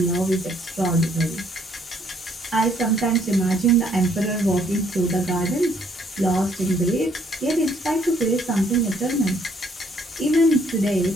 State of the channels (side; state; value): both; normal; correlation 0.66